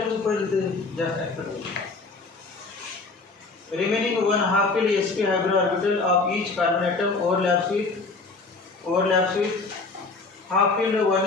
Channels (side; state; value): right; quieter; 3.9 dB